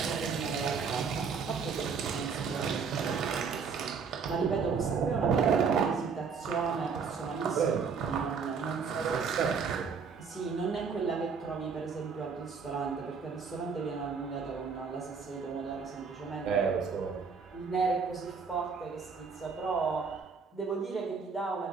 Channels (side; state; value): left; quieter; 5.6 dB